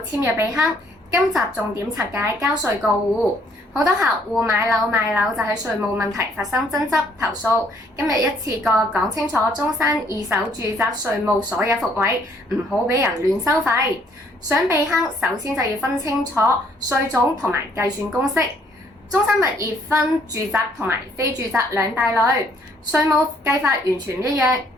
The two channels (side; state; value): both; normal; correlation 0.65